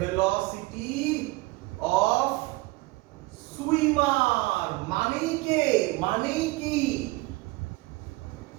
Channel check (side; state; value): left; quieter; 22.0 dB